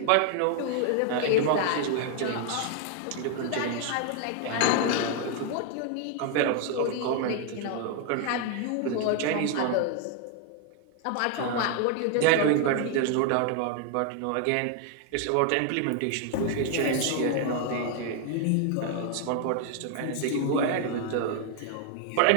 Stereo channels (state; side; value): different; both; correlation 0.00